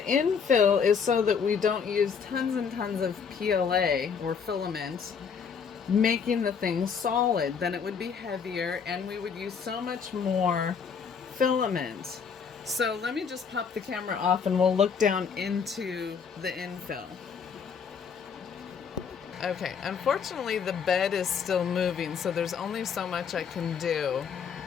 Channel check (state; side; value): quieter; right; 6.4 dB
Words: infill is so that we don't use tons and tons of PLA or filament, making the thing solid. Then it would be heavier and we would use so much more filament. So let me just pop the camera off and we'll look down into the infill. Okay, unfortunately the bed is still moving, so there's only so much I can do.